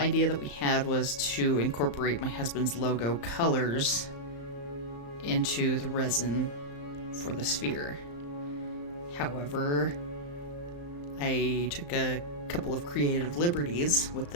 that we had was to incorporate my husband's logo colors into the resin for the sphere. However, I took a couple of creative liberties with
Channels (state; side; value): late; right; 35 ms